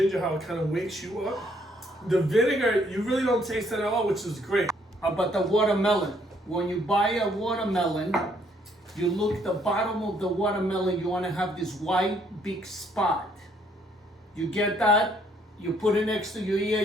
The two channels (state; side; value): normal; both; correlation 0.67